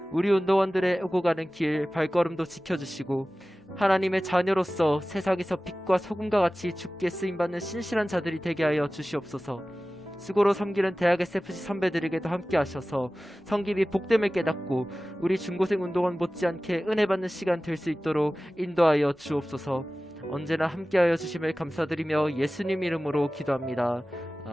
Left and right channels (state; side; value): normal; both; correlation 0.97